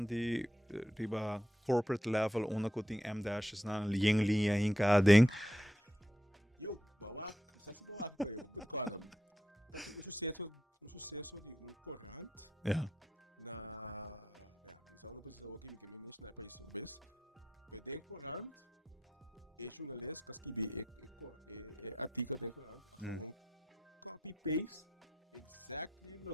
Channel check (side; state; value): both; normal; correlation 0.82